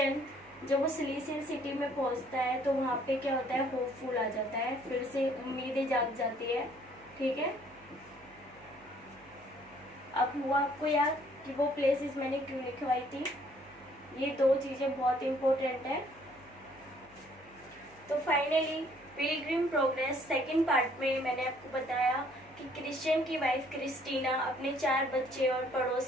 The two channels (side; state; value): right; noise; hum, 26 dB below the sound